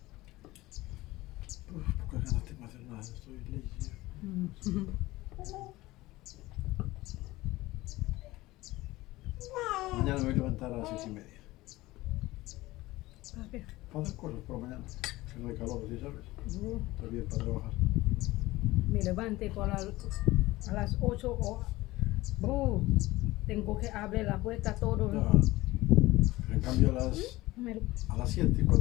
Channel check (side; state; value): right; quieter; 18.8 dB